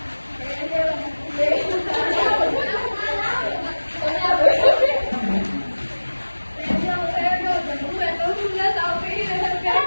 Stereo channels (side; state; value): both; inverted; correlation -1.00